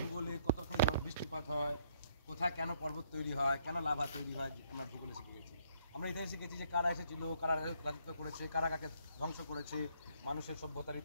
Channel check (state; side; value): inverted; both; correlation -0.67